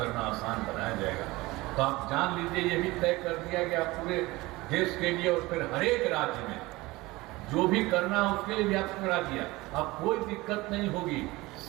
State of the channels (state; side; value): quieter; left; 20.8 dB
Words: आसान बनाया जाएगा। तो आप जान लीजिए, ये भी तय कर दिया गया पूरे देश के लिए, और फिर हर एक राज्य में जो भी करना है उसके लिए भी आपको करा दिया। अब कोई दिक्कत नहीं होगी,